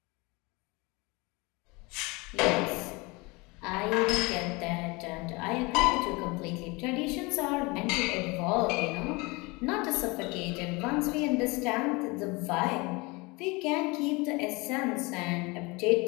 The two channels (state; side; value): quieter; right; 25.6 dB